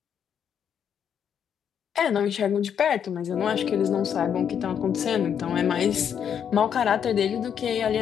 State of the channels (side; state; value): right; quieter; 8.3 dB